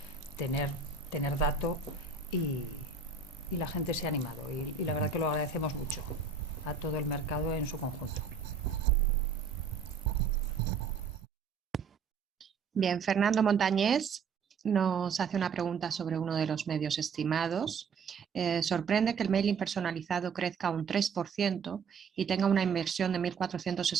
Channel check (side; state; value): left; quieter; 5.5 dB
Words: tener dato y la gente se ha animado y la verdad que lo agradecemos mucho a todo el mercado en su conjunto. Bien, Fernando Montañés nos hace una pregunta sobre uno de los medios estimados. Sorprende que el mailing personalizado crezca un 3% y tenga una inversión de